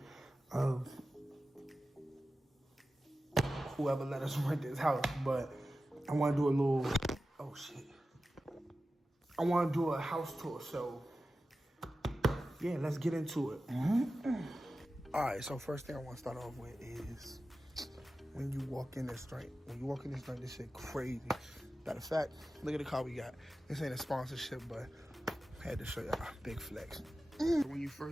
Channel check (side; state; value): both; normal; correlation 0.93